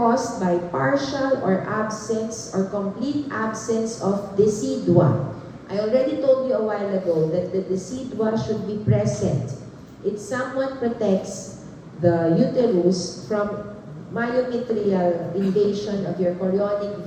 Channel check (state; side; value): identical; both; correlation 1.00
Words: by partial or absence or complete absence of decidua. I already told you a while ago that the decidua should be present. It somewhat protects the uterus from myometrial invasion of your chorionic